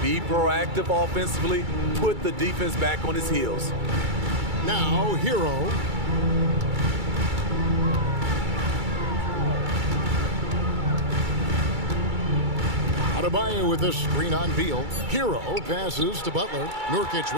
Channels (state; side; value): late; left; 2.3 ms